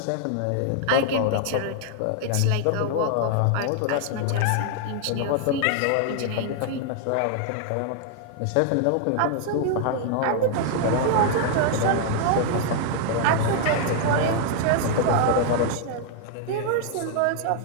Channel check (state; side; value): different; both; correlation 0.00